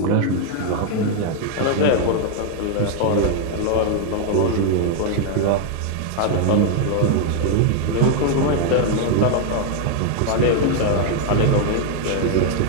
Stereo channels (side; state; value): both; different; correlation 0.00